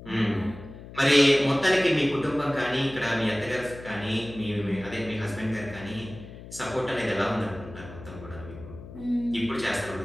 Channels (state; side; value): noise; left; hum, 15 dB below the sound